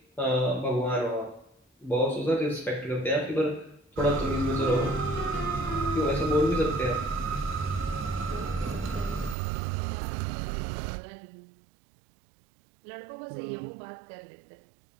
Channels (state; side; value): drops out; left; at 9.3 s